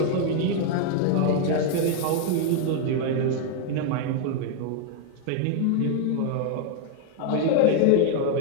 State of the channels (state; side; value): different; both; correlation 0.00